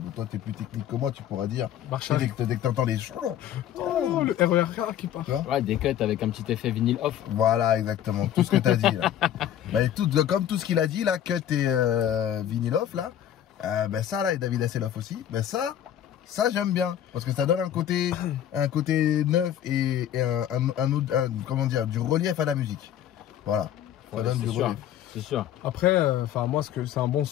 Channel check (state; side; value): quieter; right; 10.7 dB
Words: Toi, t'es plus technique que moi, tu pourras dire. Marche arrêt. Dès que t'entends les oh, le RER qui part. Ouais, des cuts avec un petit effet vinyle off. Voilà, exactement, tout ce que t'as dit là. Bah, comme tout ce qu'il a dit là, cut et vinyle off là. Ça là, et David Hasselhoff aussi. Ça j'aime bien parce que ça donne un côté neuf et comment dire, du relief à la musique. Voilà. Ça donne du relief. C'est sûr. Après, moi c'est un bon